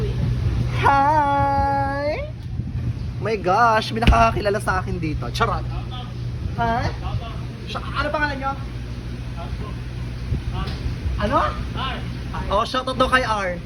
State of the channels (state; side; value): identical; both; correlation 1.00